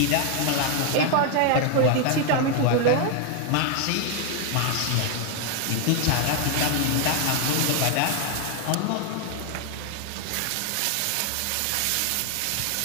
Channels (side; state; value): both; different; correlation 0.01